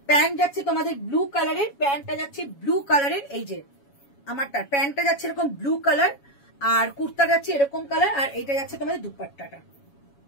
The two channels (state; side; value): late; right; 7.2 ms